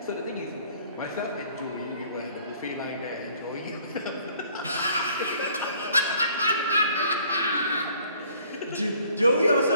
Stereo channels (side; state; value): both; inverted; correlation -0.58